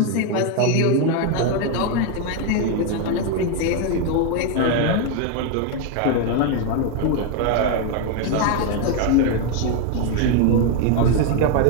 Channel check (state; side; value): different; both; correlation 0.01